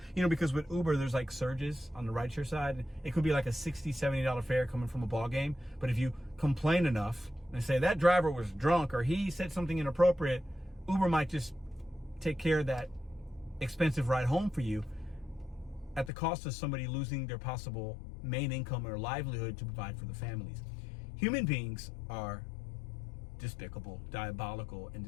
You know, because with Uber, there's like surges on the rideshare side. It could be like a $60, $70 fare coming from a ball game. But if you complain enough and say that driver was drunk or he said something inappropriate, Uber might just take care of that expensive ride home for you at the cost of somebody losing their possible main income or livelihood to provide for the families. Human beings are despicable, diabolical, and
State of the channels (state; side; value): drops out; right; at 16.1 s